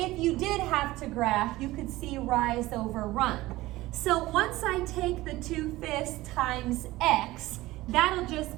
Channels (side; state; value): left; quieter; 18.1 dB